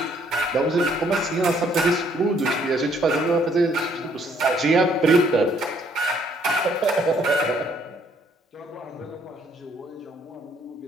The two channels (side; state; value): both; normal; correlation 0.65